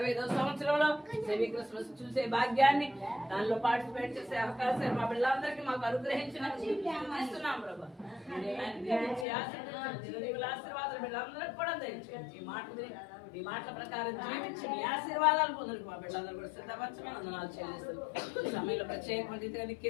సంవత్సరంలో సెమీ క్రిస్మస్ చూసే భాగ్యాన్ని, దానిలో పార్టిసిపేట్ చేసే అవకాశాలు మా పిల్లలందరికీ మాకు అనుగ్రహించిస్తున్నాం ప్రభా. ఆశీర్వాదాలు బిడ్డలందరికీ కూడా దయచేయండి. ఈ మాటల ప్రకారం జీవించి మీ ఆశీర్వాదాలు పొందడానికి మా బిడ్డలందరూ కూడా సిద్ధపరచమని వందనాలు చెల్లిస్తారు. ఈ సమయంలో ప్రత్యేకమైన రీతిగా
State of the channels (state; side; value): drops out; right; at 9.2 s